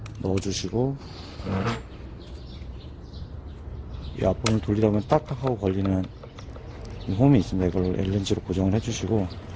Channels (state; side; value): identical; both; correlation 1.00